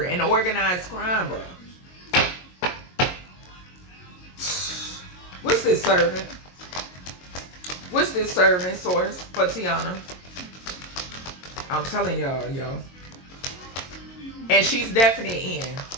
in organized crime, bro. What's this servant? What's this servant source for Teyana? I'm telling y'all, yo. And she's definitely in.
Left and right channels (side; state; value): right; late; 22 ms